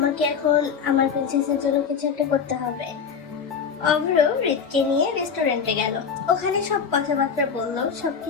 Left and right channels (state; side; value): quieter; right; 6.5 dB